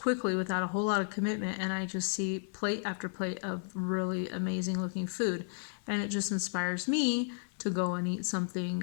without a whole lot of commitment, and I just see plate after plate of really amazing looking food, and it just inspires me to go and eat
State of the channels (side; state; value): right; silent; digital silence